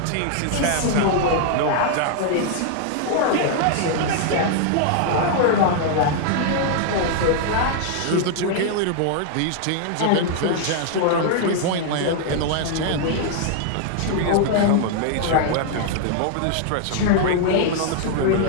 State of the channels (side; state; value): both; different; correlation 0.00